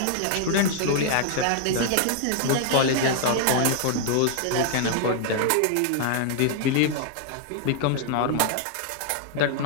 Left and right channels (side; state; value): both; different; correlation 0.00